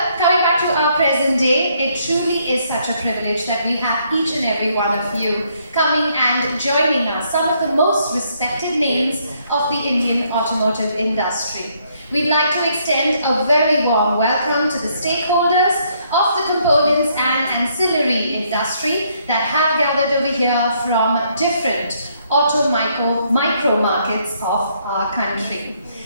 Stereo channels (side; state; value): both; inverted; correlation -0.70